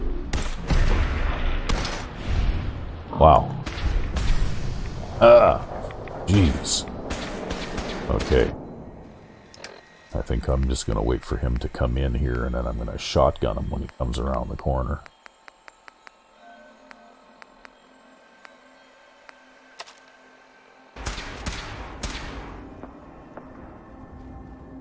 Wow. Ah, jeez. Okay. I think I'm just going to wait for him to come in here, and then I'm going to shotgun him when he comes around the corner.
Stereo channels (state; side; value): identical; both; correlation 1.00